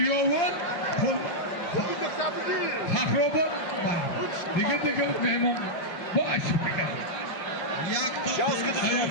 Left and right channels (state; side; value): late; right; 5.9 ms